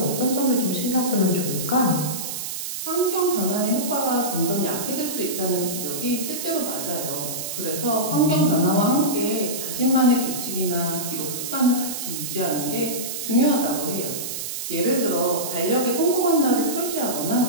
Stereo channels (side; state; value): right; noise; hiss, 5 dB below the sound